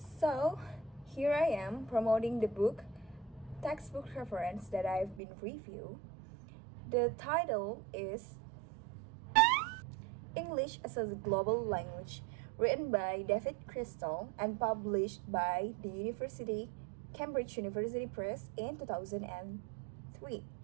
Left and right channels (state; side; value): drops out; left; at 5.2 s